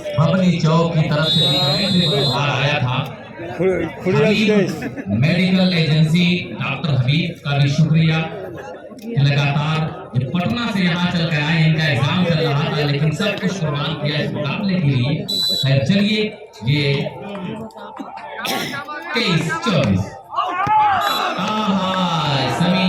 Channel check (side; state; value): both; identical; correlation 1.00